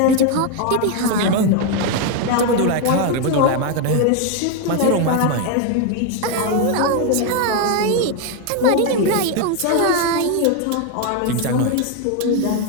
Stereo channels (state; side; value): different; both; correlation 0.01